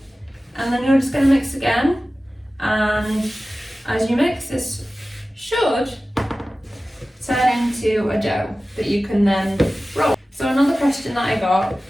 And then you're just going to mix again. And as you mix, this should turn into a dough that you can then roll. So another question that I got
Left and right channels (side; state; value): both; normal; correlation 0.96